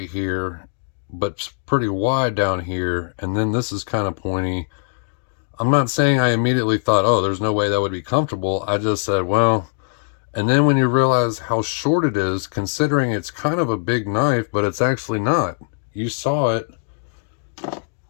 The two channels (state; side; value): silent; right; digital silence